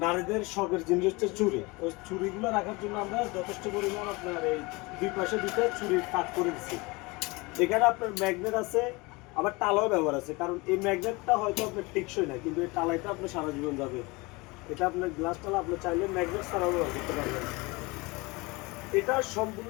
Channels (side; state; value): right; quieter; 24.9 dB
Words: নারীদের শখের জিনিস হচ্ছে চুড়ি। ওই চুড়িগুলো রাখার জন্য আমরা যথেষ্ট পরিমাণ আপনার এই দুই পাশে দুইটা চুড়ি কাট করে দিচ্ছি। এখানে আপনার ম্যাগনেট আছে, আবার টালাও ব্যবহার আছে। কারণ এই ম্যাগনেটটা হয়তো আপনার টেকসই না, কিন্তু এই টালাইটা আপনার সারা জীবন যাবে। এটা আপনার গ্লাস টালা আপনি চাইলে ম্যাগনেট ছাড়াও ব্যবহার করতে পারবেন। এটা